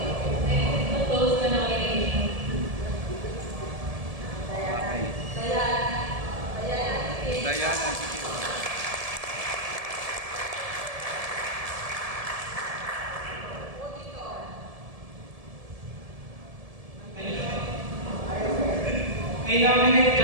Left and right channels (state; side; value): late; left; 1.7 ms